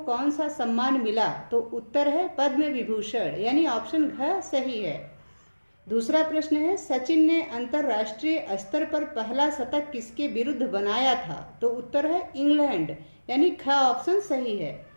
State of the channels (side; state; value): both; inverted; correlation -1.00